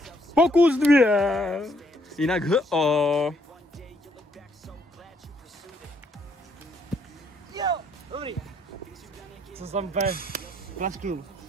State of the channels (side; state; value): both; normal; correlation 0.70